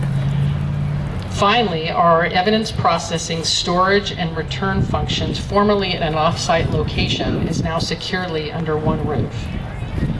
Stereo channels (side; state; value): both; identical; correlation 1.00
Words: Finally, our evidence processing, storage, and return functions, formerly at an off-site location, is now securely under one roof.